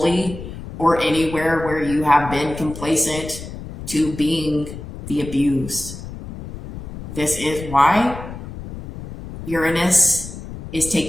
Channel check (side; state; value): left; noise; rumble, 11 dB below the sound